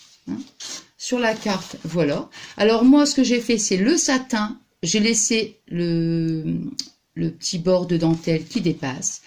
sur la carte, voilà. Alors moi, ce que j'ai fait, c'est le satin. J'ai laissé le petit bord de dentelle qui dépasse.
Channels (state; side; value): identical; both; correlation 1.00